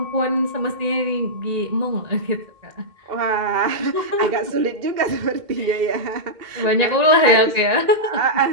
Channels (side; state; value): left; late; 2.1 ms